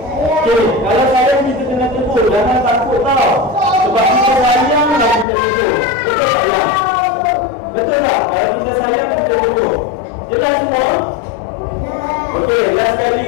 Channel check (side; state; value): right; drops out; at 5.2 s